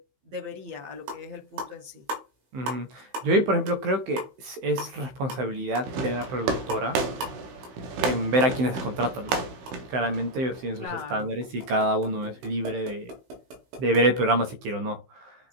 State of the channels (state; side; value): late; left; 15 ms